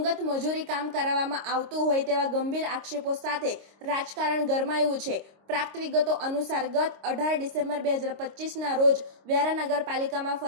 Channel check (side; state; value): left; late; 26 ms